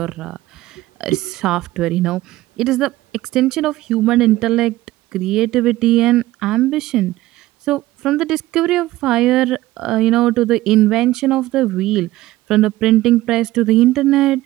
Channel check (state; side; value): quieter; left; 16.9 dB